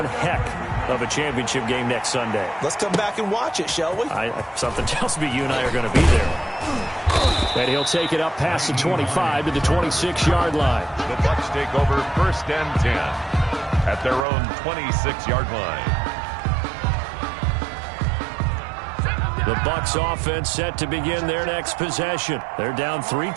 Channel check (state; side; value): drops out; left; at 14.2 s